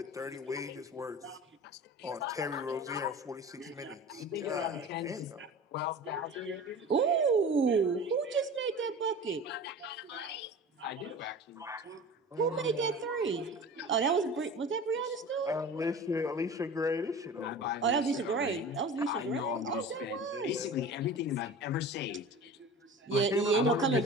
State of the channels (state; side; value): normal; both; correlation 0.36